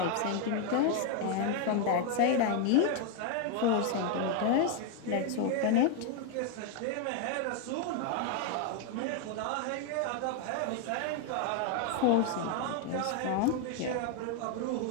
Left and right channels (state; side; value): different; both; correlation 0.01